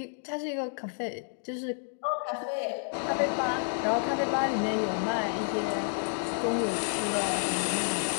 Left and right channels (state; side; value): silent; right; digital silence